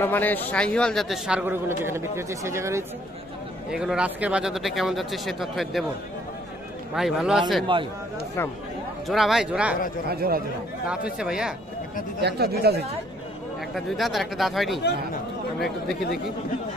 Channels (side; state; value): both; normal; correlation 0.63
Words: মানের শাহিওয়াল জাতের ষাঁড় গরুগুলো যেখানে বিক্রি হচ্ছে সেই জায়গায় রয়েছে। এগুলো আজকের বাজার দরটা কেমন যাচ্ছে সে তথ্য দেব। ভাই ভালো আছেন? ইসলাম জোড়া ভাই, জোড়া জোড়া দাঁত হচ্ছে ভাইয়া? একটা দুইটা হয়েছে। একটা দুই দাঁত আর একটা দাঁত হয়নি। আমরা একটু দেখি